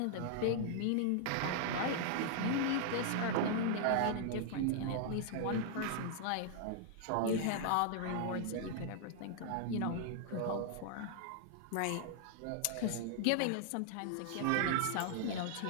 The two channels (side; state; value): both; different; correlation -0.01